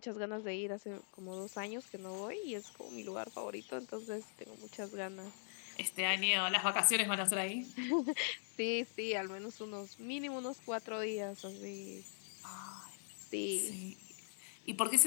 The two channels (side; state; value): right; silent; digital silence